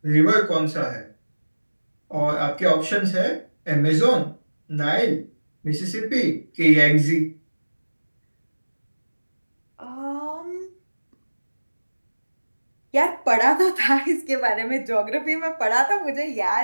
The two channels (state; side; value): inverted; both; correlation -1.00